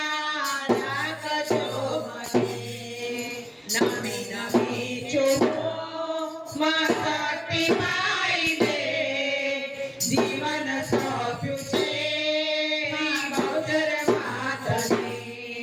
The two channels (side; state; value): both; identical; correlation 1.00